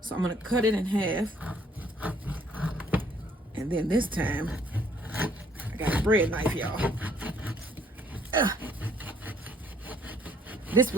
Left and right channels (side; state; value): both; normal; correlation 0.64